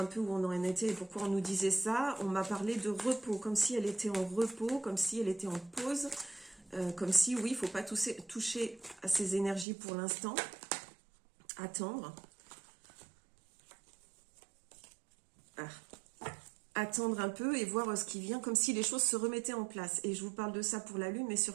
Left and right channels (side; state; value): left; drops out; at 9.7 s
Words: peu où on en était et pourquoi on nous disait ça. On m'a parlé de repos, comme si elle était en repos, comme si elle était en pause, comme si, oui, il ne faut pas toucher à ces énergies pour l'instant, attendre. Attendre un peu et voir ce qui vient, comme si les choses se remettaient en place. Et je vous parle de ça pour la lune, mais